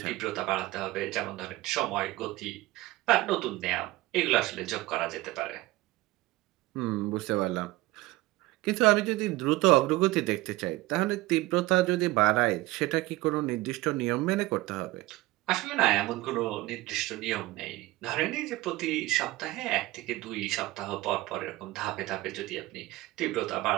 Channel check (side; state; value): left; quieter; 18.9 dB